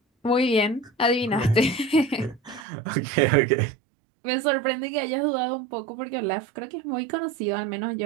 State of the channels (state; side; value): drops out; left; at 2.7 s